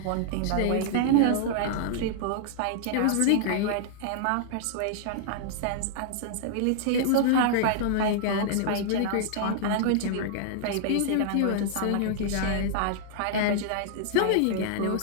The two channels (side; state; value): both; different; correlation -0.01